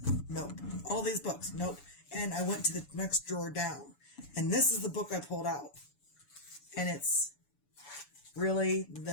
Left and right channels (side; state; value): right; late; 7.0 ms